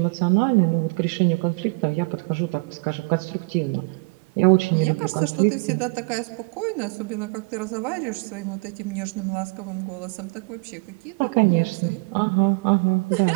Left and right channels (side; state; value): left; quieter; 29.7 dB